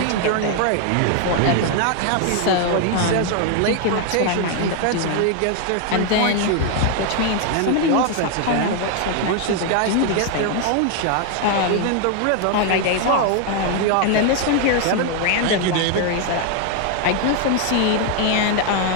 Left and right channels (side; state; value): both; different; correlation 0.00